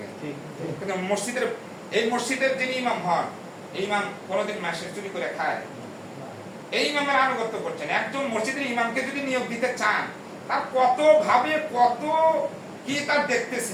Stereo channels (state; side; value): identical; both; correlation 1.00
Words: কিন্তু মসজিদের, এই মসজিদের যিনি ইমাম হন, এই ইমাম কোনোদিন মাসে চুরি করে খায়? এই ইমামের আনুগত্য করছেন। একজন মসজিদের ইমামকে যদি নিয়োগ দিতে চান, তার কত ভাবে কত কি তার